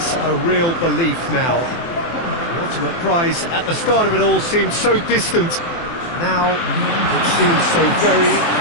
a real belief now. The ultimate prize at the start of it all seemed so distant. Now it seems so very,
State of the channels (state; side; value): late; right; 24 ms